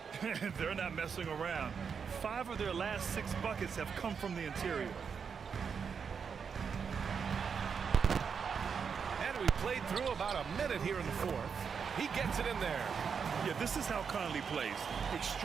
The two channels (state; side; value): quieter; left; 6.3 dB